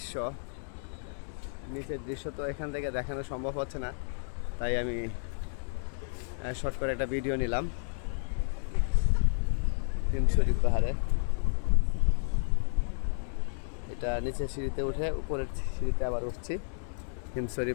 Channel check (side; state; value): right; silent; digital silence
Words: নিচের দৃশ্য তো এখান থেকে দেখানো সম্ভব হচ্ছে না, তাই আমি শর্ট করে একটা ভিডিও নিলাম হিমছড়ি পাহাড়ে। এটা নিচের সিঁড়িতে উঠে উপরের সিঁড়িতে আবার উঠছি হিমছড়ি